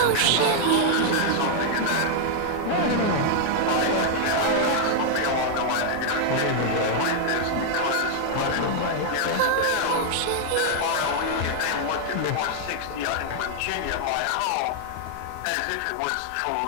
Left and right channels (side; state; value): both; different; correlation 0.00